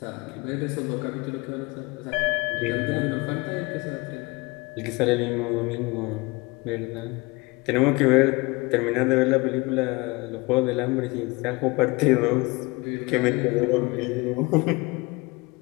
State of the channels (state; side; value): quieter; right; 25.1 dB